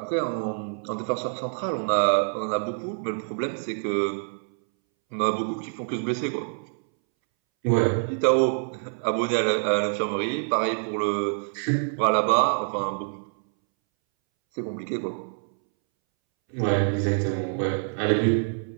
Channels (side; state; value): left; silent; 61 dB below the other